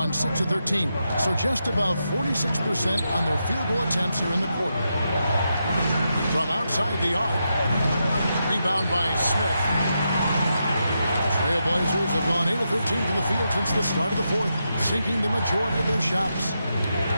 6 of 13, so just about 46% on their field goal attempts here in the quarter. From outside the arc, rebound by Smith. Trailblazers have gone 8 of 13 from the field since the start of the fourth, sinking the majority of their shots.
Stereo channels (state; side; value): inverted; both; correlation -0.85